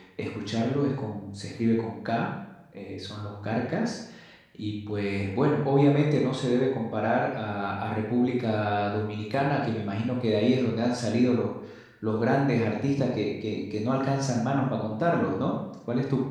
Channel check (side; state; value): both; identical; correlation 1.00